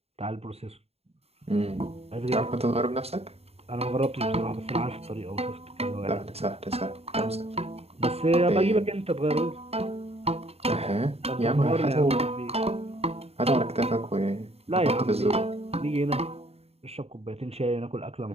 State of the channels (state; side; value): late; left; 0.30 ms